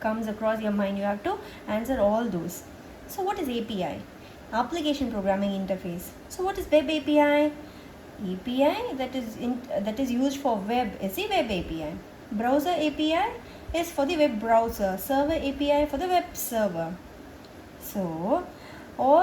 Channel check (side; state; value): both; identical; correlation 1.00